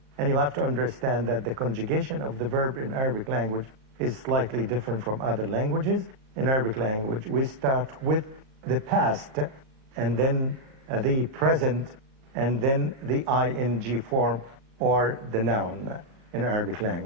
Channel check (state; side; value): late; left; 38 ms